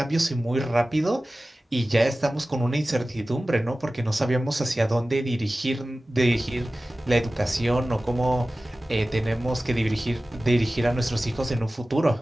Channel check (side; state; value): both; normal; correlation 0.96